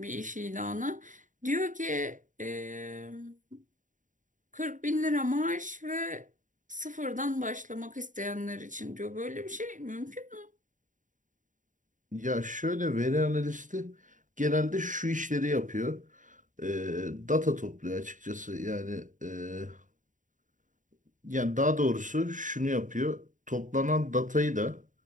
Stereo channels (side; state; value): left; late; 0.37 ms